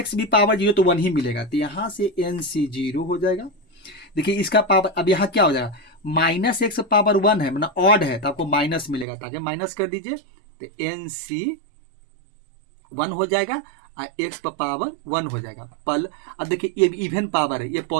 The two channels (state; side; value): drops out; left; at 9.1 s